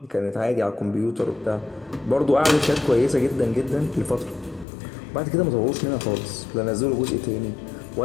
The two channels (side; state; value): right; drops out; at 4.7 s